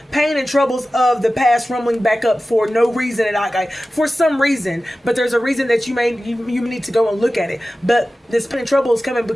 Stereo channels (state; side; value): normal; both; correlation 0.95